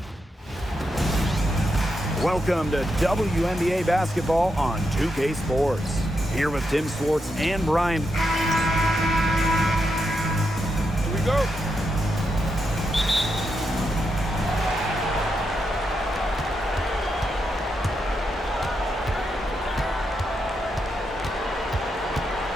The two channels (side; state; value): both; normal; correlation 0.84